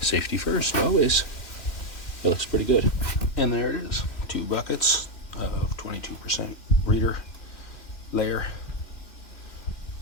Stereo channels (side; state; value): right; late; 3.0 ms